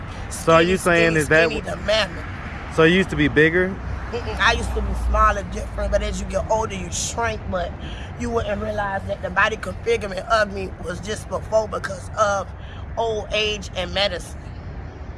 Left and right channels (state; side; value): identical; both; correlation 1.00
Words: skinny, so are you saying skinny, is that skinny to mammoth. So you used to be bigger? I used to be smaller, different, but as you get older, you shrink, but you wouldn't realize that the body configurement of me was just before because of old age and medicine.